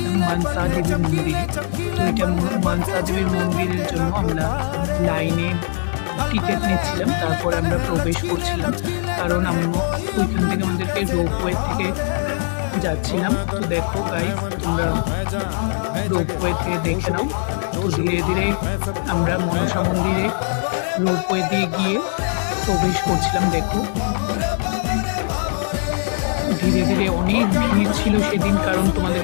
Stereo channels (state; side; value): silent; right; 62 dB below the other